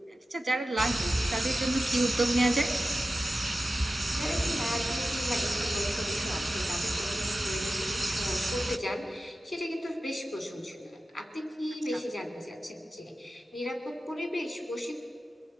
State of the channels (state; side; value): normal; both; correlation 0.94